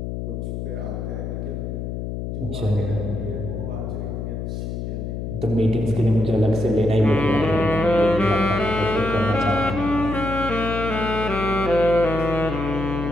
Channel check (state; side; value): noise; left; hum, 5 dB below the sound